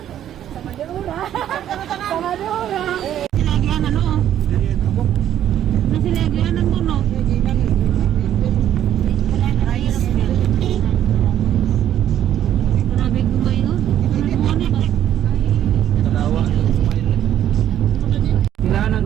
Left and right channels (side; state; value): left; quieter; 10.9 dB